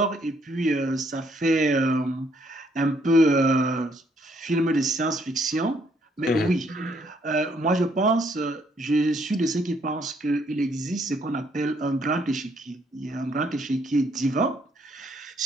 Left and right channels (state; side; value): normal; both; correlation 0.69